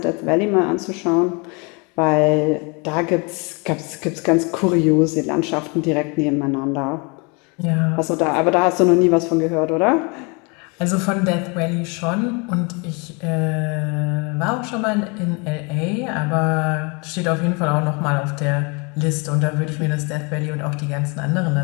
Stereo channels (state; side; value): quieter; right; 31.2 dB